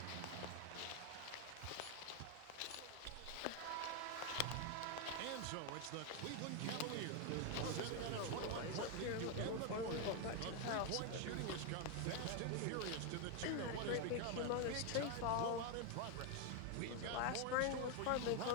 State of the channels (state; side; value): different; both; correlation 0.01